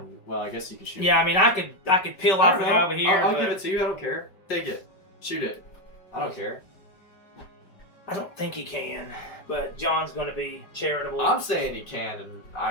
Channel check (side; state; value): right; late; 5.1 ms